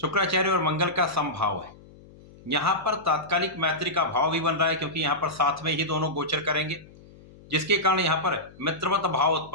और मंगल का समभाव है। यहां पर तात्कालिक मैत्री का भाव भी बन रहा है, क्योंकि यहां पर साथ में ही दोनों गोचर करेंगे, जिसके कारण यहां पर मित्रवत भाव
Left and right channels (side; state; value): left; noise; hum, 22 dB below the sound